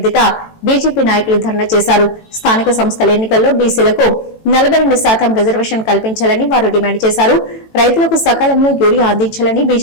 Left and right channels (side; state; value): right; late; 18 ms